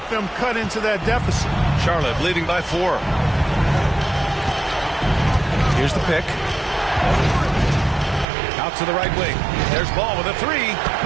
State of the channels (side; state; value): left; drops out; at 8.2 s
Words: them cut into that deficit. Charlotte leading by 4. Here's the pick. Out to the right wing. There's Ball with a 3.